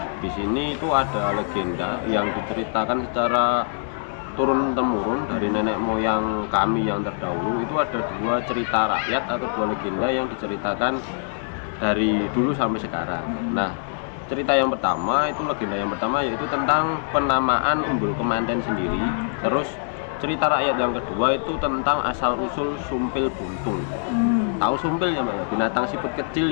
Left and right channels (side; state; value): right; silent; digital silence